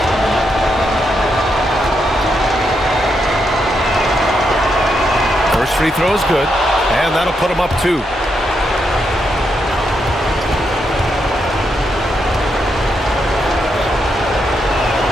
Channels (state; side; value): normal; both; correlation 0.81